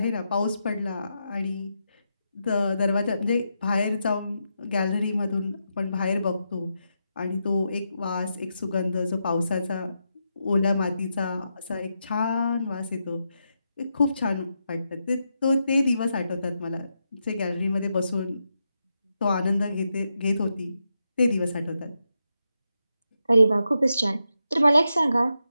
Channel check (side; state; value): both; inverted; correlation -0.85